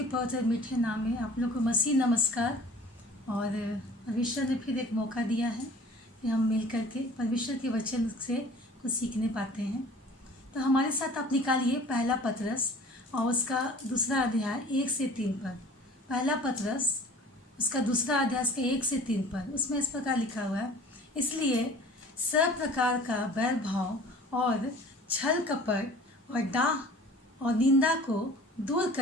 पवित्र मीठे नाम में आप लोग को मसीह नमस्कार। और परमेश्वर ने फिर एक मौका दिया है कि हम मिल कर के परमेश्वर के वचन से कुछ सीखने पाते हैं। तो हमारे साथ आप निकालिए पहला पतरस और उसका दूसरा अध्याय 1 से 3 पर। पहला पतरस उसका दूसरा अध्याय उसका 1 से 3 पर। उसमें इस प्रकार लिखा हुआ है, इसलिए सब प्रकार का बैर भाव और छल कपट और डाह और निंदा को दूर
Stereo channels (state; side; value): normal; both; correlation 0.46